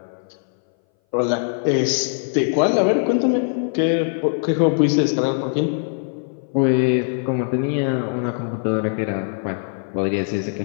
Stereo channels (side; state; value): right; silent; 61 dB below the other